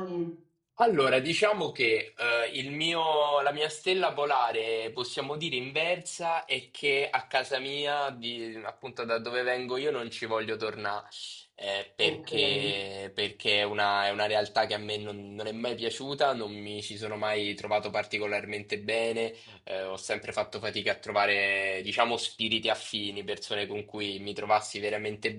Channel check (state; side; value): identical; both; correlation 1.00